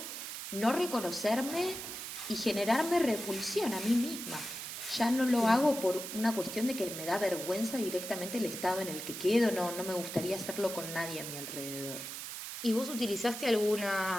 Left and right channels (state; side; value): noise; right; hiss, 7 dB below the sound